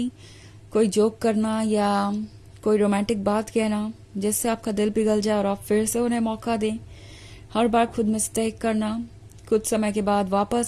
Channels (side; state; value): both; identical; correlation 1.00